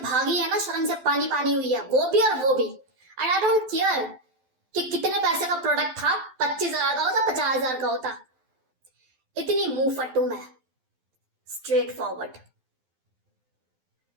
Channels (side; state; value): left; late; 12 ms